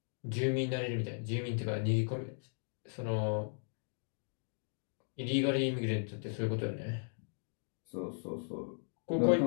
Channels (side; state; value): right; silent; digital silence